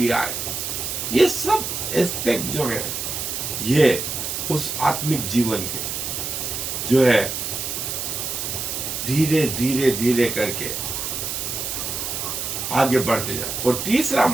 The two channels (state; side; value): noise; right; hiss, 3 dB below the sound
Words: आए। ये सब एस्पेक्ट जो है ये उस आत्मिक जीवन के जो है धीरे करके आगे बढ़ते जाए। और तीसरा